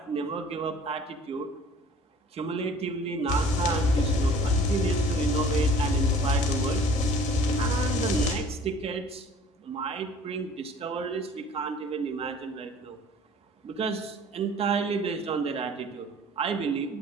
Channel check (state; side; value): normal; both; correlation 0.50